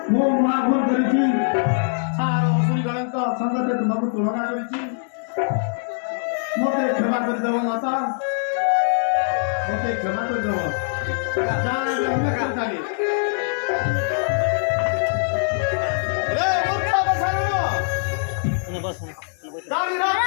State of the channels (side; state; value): right; silent; digital silence